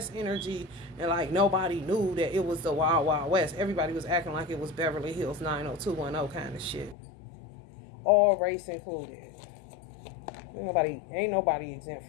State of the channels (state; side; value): drops out; right; at 7.0 s